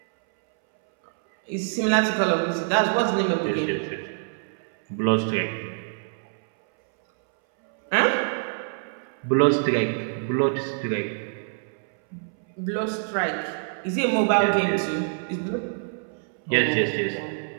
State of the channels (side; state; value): left; silent; 61 dB below the other